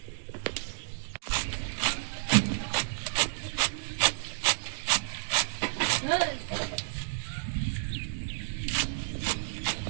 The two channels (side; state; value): left; silent; digital silence